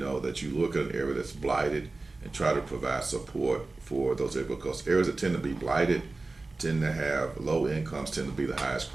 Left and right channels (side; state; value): left; quieter; 3.4 dB